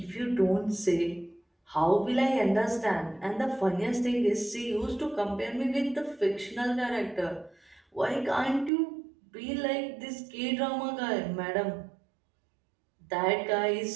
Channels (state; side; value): drops out; left; at 8.7 s